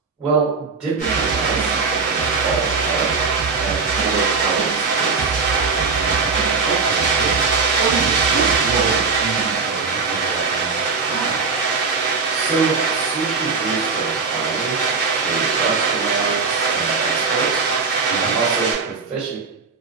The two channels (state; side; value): quieter; left; 4.8 dB